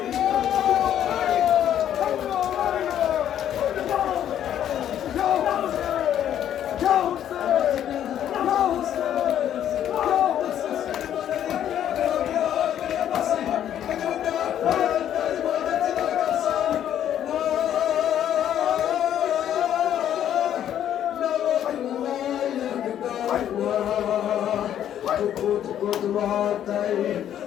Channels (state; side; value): quieter; right; 10.5 dB